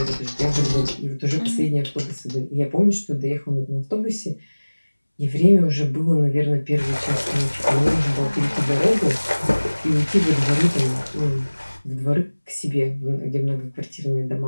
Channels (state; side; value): inverted; both; correlation -1.00